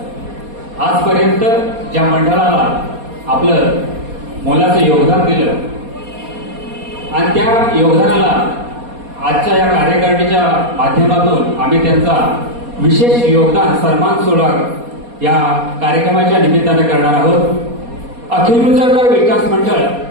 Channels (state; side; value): late; left; 4.2 ms